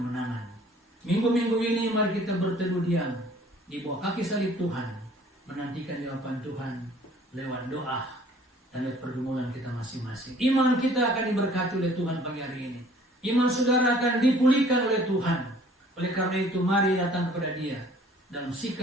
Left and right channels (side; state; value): both; normal; correlation 0.54